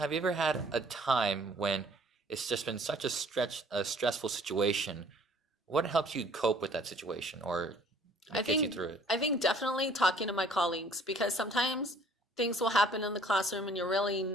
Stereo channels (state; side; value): normal; both; correlation 0.56